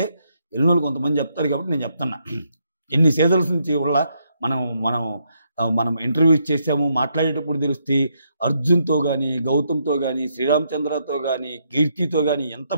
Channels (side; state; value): both; inverted; correlation -0.77